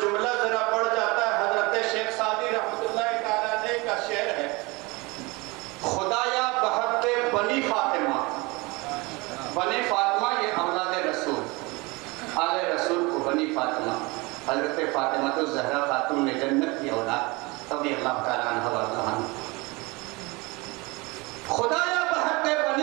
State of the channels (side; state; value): left; quieter; 24.9 dB